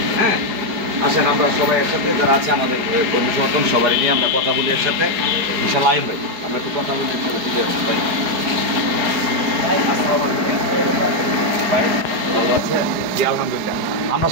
হ্যাঁ, আসেন আমরা সবাই একসাথে, যারা আছে আমাদের কর্মী সমর্থন সবাই নিয়ে আমরা কথা বলি একসাথে। ইনশাল্লাহ আইন ভাই, আমরা একটু কথা বলি একসাথে, দিলে ভাই। ভাই ভালো আছে? জি আলহামদুলিল্লাহ। আমরা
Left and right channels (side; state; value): left; late; 4.7 ms